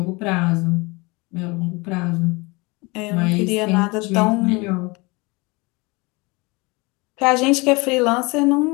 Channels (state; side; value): quieter; right; 25.8 dB